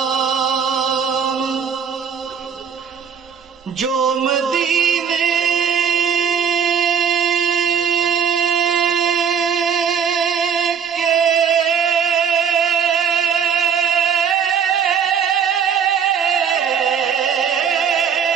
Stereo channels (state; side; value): quieter; left; 7.4 dB